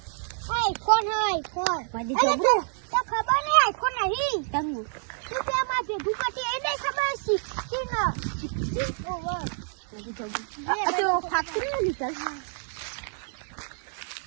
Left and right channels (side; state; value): left; silent; 60 dB below the other